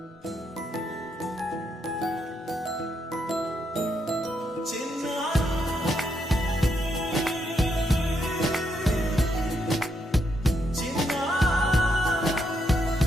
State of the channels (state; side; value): normal; both; correlation 0.79